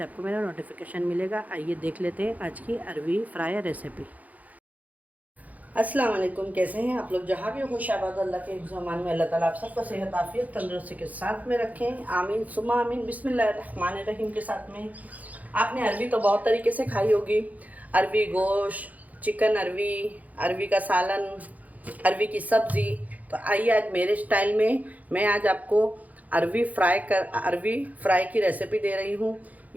आपको मेरा नोटिफिकेशन मिलेगा। आइए देख लेते हैं आज की अरवी फ्राई रेसिपी। अस्सलाम वालेकुम, कैसे हैं आप लोग? जहाँ भी खुशाबाद अल्लाह के ज़मान में अल्लाह ताला आप सबको सेहत आफियत तंदुरुस्ती के साथ में रखें, आमीन सुमा आमीन। बिस्मिल्लाहिर्रहमानिर्रहीम के साथ में आपने अरवी तो बहुत तरीके से खाई होगी। अरवी गोश्त, चिकन अरवी, अरवी का सालन, अरवी की सब्ज़ी। तो आइए आज मेरे स्टाइल में मैं आज आपको अरवी फ्राई की रेसिपी दे रही हूँ।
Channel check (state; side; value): late; left; 0.077 ms